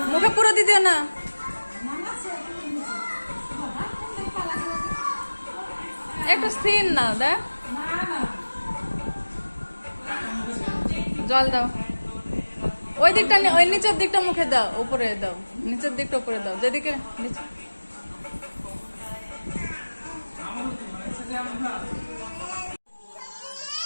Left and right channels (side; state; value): both; inverted; correlation -1.00